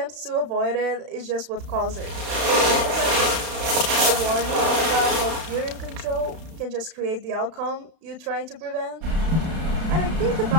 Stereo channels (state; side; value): late; left; 32 ms